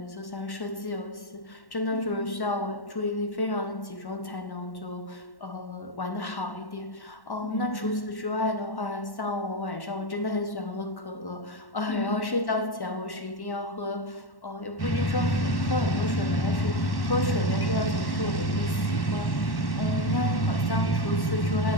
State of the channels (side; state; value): right; late; 1.1 ms